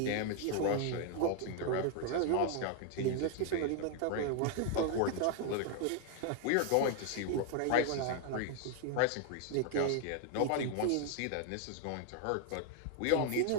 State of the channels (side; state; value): both; different; correlation 0.00